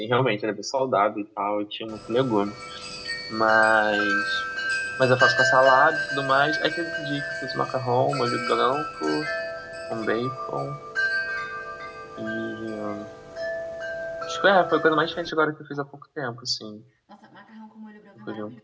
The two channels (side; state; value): both; identical; correlation 1.00